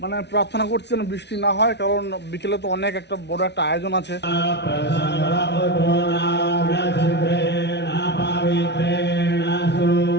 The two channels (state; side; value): late; right; 0.50 ms